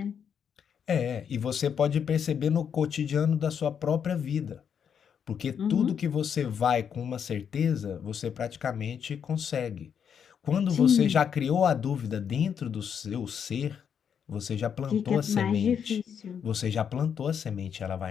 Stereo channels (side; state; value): right; quieter; 7.7 dB